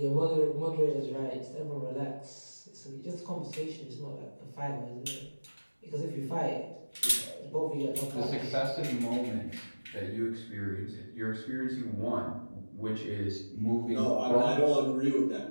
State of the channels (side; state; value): both; inverted; correlation -1.00